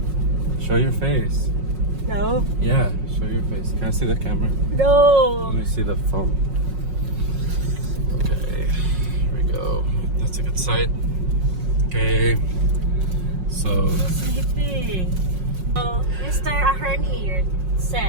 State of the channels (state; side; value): late; left; 5.5 ms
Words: Show your face. No. Yeah, show your face. Can I see the camera? No. Let me see the phone. Okay, here we go. That's a good sight. Okay, so Sleepy. So, Mr. Ahern here